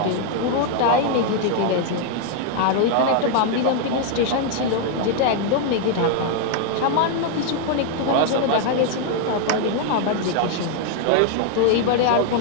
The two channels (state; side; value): different; both; correlation 0.00